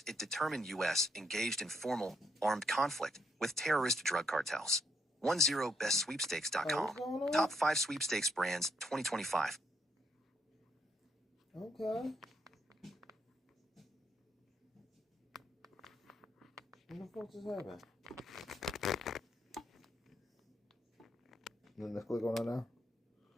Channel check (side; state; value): both; normal; correlation 0.75